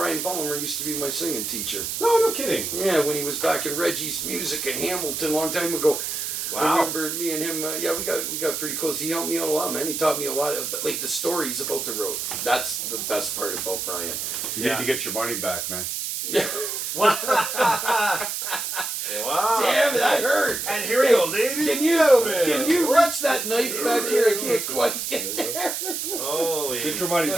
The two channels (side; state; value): right; noise; hiss, 3 dB below the sound